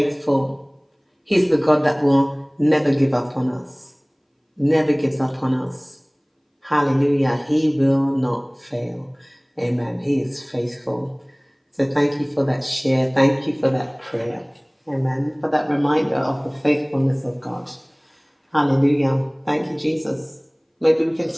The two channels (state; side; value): identical; both; correlation 1.00